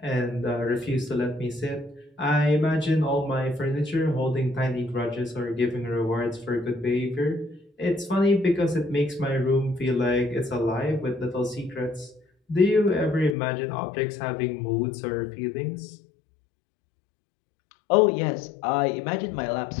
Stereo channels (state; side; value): drops out; right; at 13.4 s